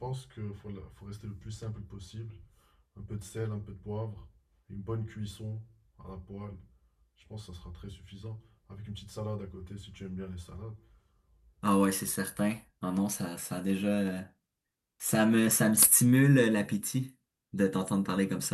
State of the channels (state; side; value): identical; both; correlation 1.00